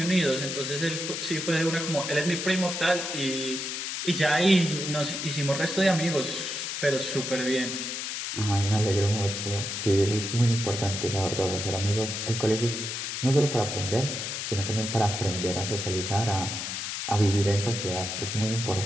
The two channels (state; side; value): noise; left; hiss, 4 dB below the sound